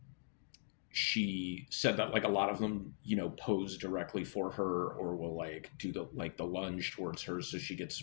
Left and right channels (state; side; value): silent; right; digital silence